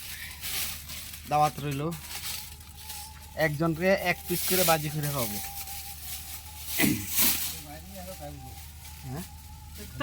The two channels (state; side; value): identical; both; correlation 1.00